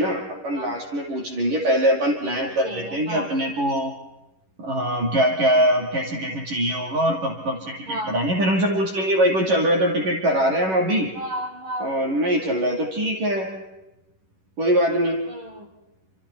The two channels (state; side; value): late; left; 11 ms